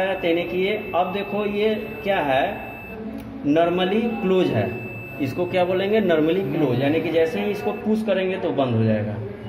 है, यानी कि ये अब देखो ये क्या है, नॉर्मली क्लोज है। इसको क्या बोलेंगे, नॉर्मली क्लोज, यानी कि जैसे ही इसको पुश करेंगे तो बंद हो जाएगा,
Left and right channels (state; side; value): identical; both; correlation 1.00